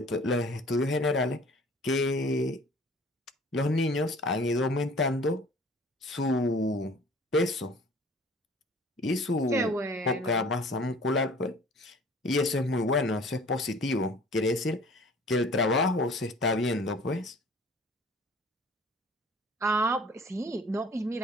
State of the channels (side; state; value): both; normal; correlation 0.49